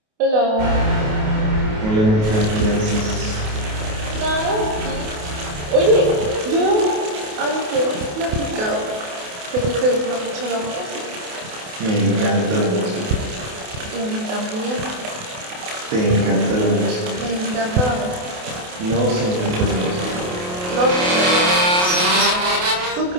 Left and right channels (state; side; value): late; left; 28 ms